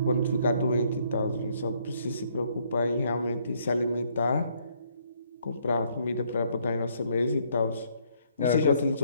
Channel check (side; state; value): both; inverted; correlation -0.68